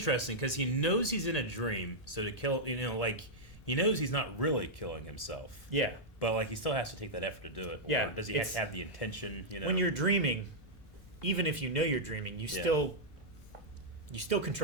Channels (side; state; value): both; normal; correlation -0.07